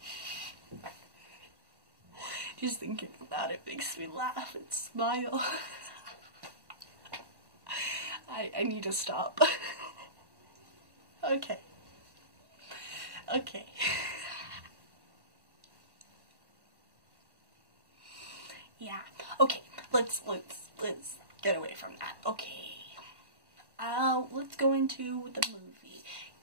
Just thinking about it makes me laugh and smile. I need to stop. Okay. Okay. Yeah. Okay. Let's get away from that. Okay. Let's go into the movie.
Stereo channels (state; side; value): late; left; 1.1 ms